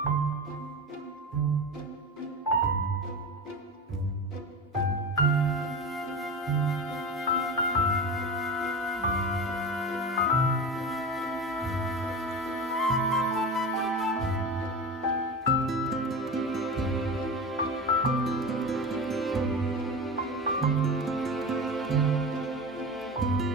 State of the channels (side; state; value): both; normal; correlation 0.27